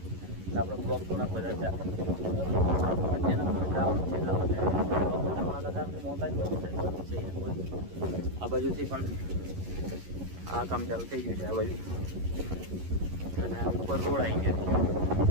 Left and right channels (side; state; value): left; late; 11 ms